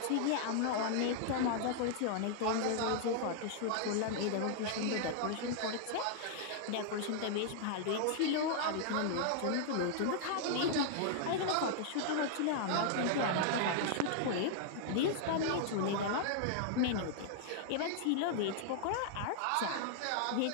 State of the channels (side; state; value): both; different; correlation -0.01